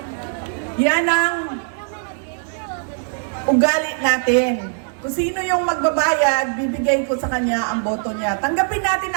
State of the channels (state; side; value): silent; left; 65 dB below the other